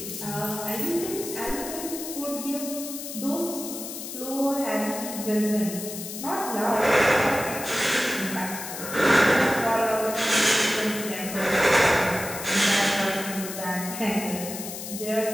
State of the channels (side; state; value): left; noise; hiss, 8 dB below the sound